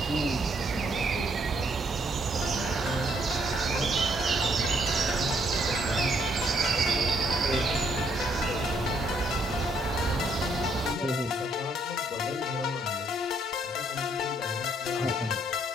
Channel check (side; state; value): both; normal; correlation 0.70